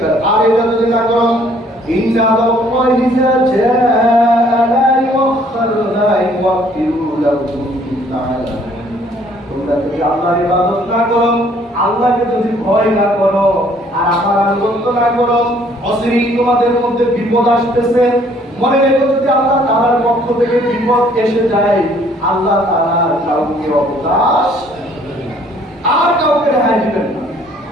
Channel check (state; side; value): normal; both; correlation 0.61